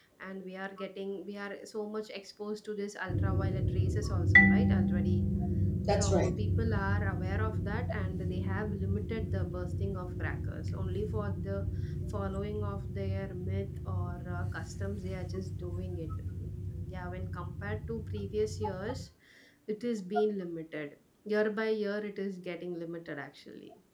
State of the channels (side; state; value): both; identical; correlation 1.00